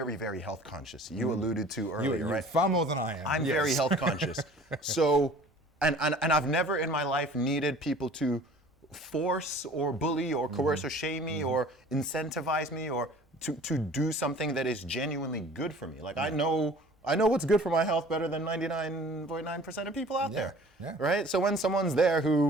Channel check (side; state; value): both; normal; correlation 0.47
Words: very health conscious. You alluded to earlier, You're right? far more than I am. I'm Yes. very health conscious. So, and I've never in my life needed people to force or bully or coerce or shame me or incentivize me or to do something that is genuinely good for me. Like I know what's good for my health better than 99.9% of people out there. Yeah. Right? So when someone's there